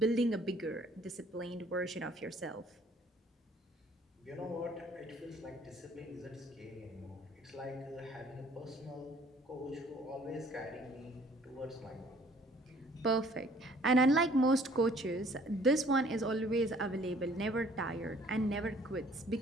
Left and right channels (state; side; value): normal; both; correlation 0.57